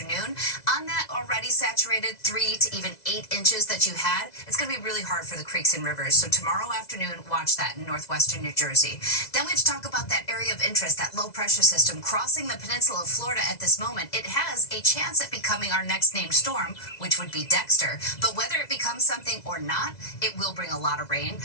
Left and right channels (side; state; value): right; late; 2.0 ms